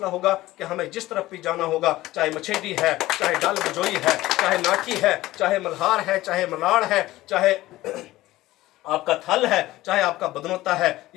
होगा कि हमें जिस तरफ भी जाना होगा, चाहे मछेडी है, चाहे डाल बजोई है, चाहे नाठी है, चाहे मल्हार है, चाहे मलाड़ है, चाहे आपका थल है, चाहे आपका बदनोता है,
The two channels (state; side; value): quieter; right; 16.9 dB